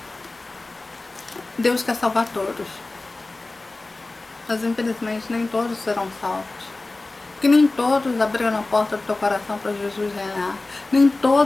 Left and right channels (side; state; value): right; quieter; 3.2 dB